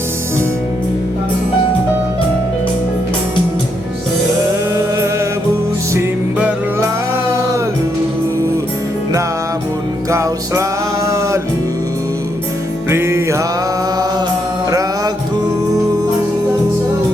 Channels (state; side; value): normal; both; correlation 0.78